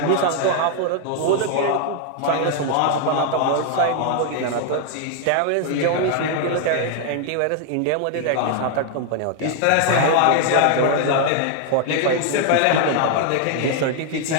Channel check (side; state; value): both; different; correlation 0.00